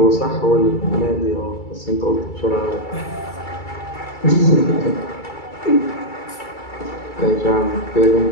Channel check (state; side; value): late; right; 2.3 ms